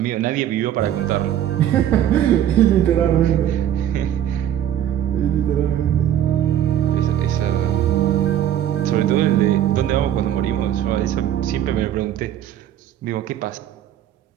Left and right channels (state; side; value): quieter; left; 10.9 dB